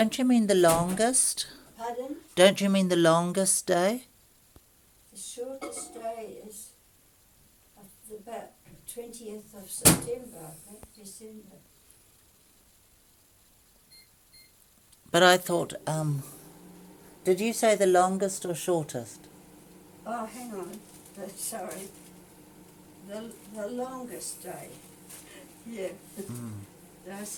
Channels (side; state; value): both; identical; correlation 1.00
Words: you mean the longest? Pardon? Don't you mean the longest day? The shortest day is about 20th of September, I think, December. But I thought, did you say the longest or shortest? Oh, hang on. Sorry. The longest day. Yeah. I